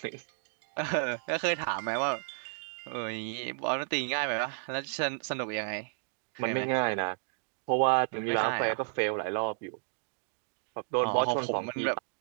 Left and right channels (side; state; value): left; silent; digital silence